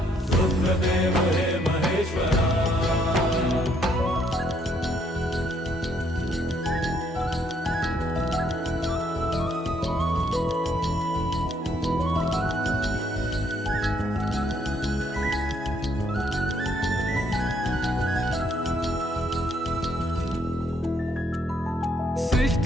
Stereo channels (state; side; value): normal; both; correlation 0.70